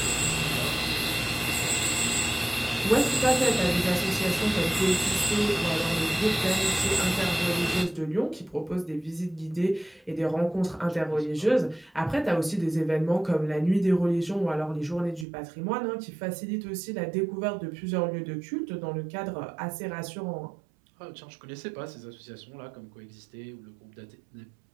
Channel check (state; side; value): drops out; left; at 15.2 s